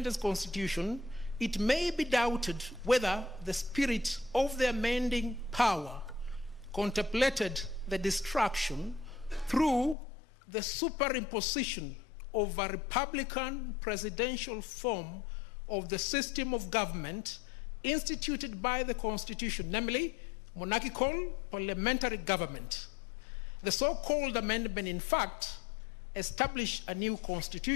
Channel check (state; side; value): drops out; right; at 10.0 s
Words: constitution, it may be doubted whether the spirit of the amending power contemplated the destruction through the superimposition of a republican presidential form of the system of government instituted by the constitution, namely monarchical parliamentary government. The so-called amendment, in fact, established a new